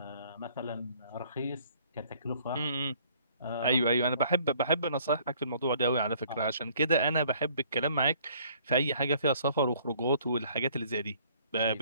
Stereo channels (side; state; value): both; inverted; correlation -0.59